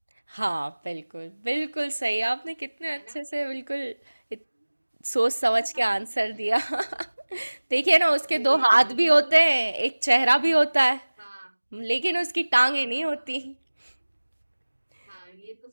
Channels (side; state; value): both; inverted; correlation -1.00